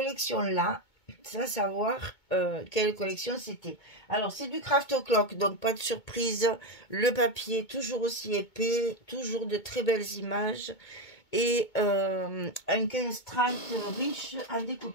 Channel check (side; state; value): right; late; 2.2 ms